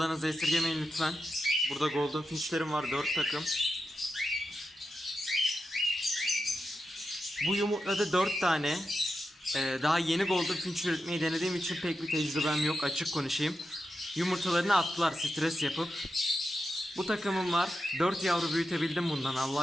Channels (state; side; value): normal; both; correlation 0.89